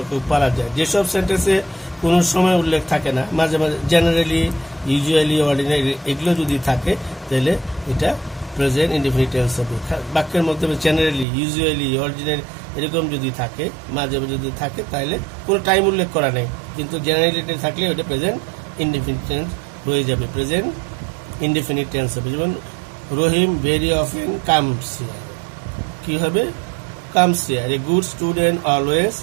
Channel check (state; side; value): drops out; left; at 11.2 s